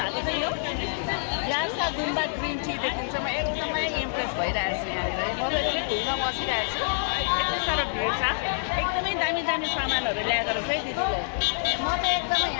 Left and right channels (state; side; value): silent; right; 60 dB below the other